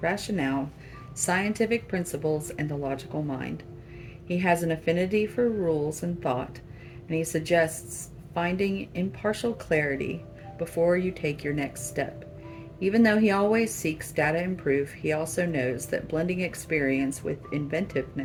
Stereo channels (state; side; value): identical; both; correlation 1.00